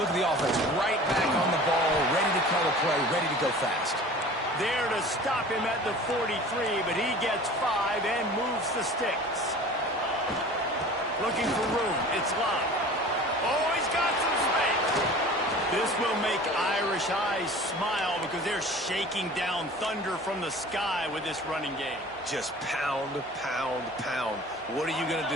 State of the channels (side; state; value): both; normal; correlation 0.42